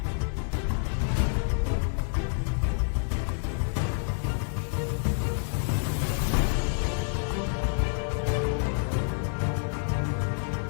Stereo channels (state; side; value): silent; right; 59 dB below the other